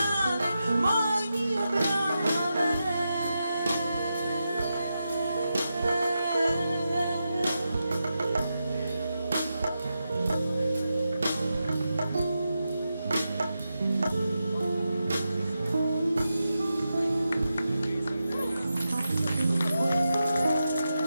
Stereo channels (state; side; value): inverted; both; correlation -0.88